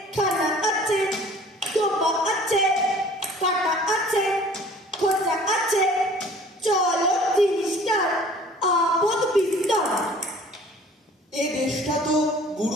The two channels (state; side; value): normal; both; correlation 0.50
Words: খানা আছে, ডোবা আছে, কাটা আছে, খোঁজা আছে, চলো জিনিসটার আপদ বিস্তর। এ দেশটা তো